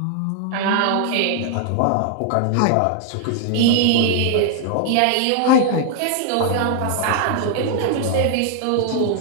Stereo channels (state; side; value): different; both; correlation 0.00